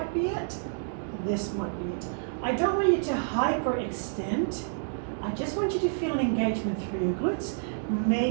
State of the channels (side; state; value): left; silent; digital silence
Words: be it, this might be it. I don't want you to hyperextend. I just want you to feel an engagement through your glutes,